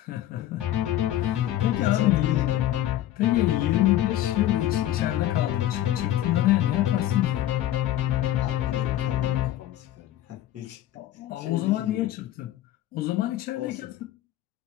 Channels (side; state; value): right; quieter; 13.3 dB